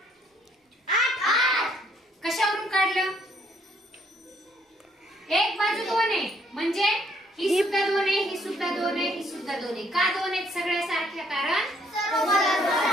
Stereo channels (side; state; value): both; normal; correlation 0.67